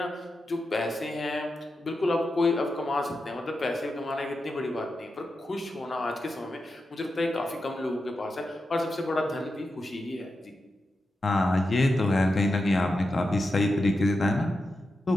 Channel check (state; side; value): normal; both; correlation 0.89